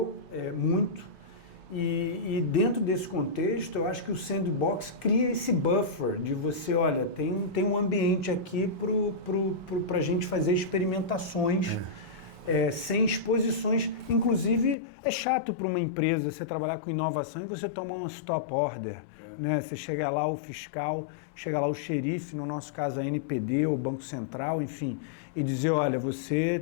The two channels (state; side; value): drops out; right; at 14.8 s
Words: muito e dentro desse contexto eu acho que o sandbox cria esse buffer de você, olha, tem um ambiente aqui para a gente fazer experimentações sem exposições. Inclusive é chato para uma empresa você trabalhar com inovação e você tomar um stop order, né? Você chega lá o fiscal, chega lá o xerife, no nosso caso a NPD ou o Banco Central, enfim, e dizer, olha, você